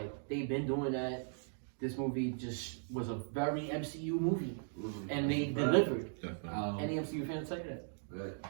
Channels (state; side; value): silent; left; digital silence